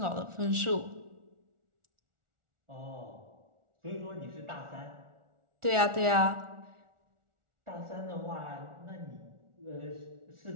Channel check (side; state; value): left; late; 1.4 ms